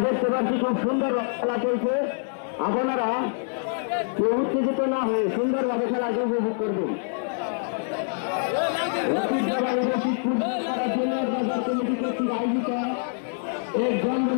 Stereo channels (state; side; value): silent; right; digital silence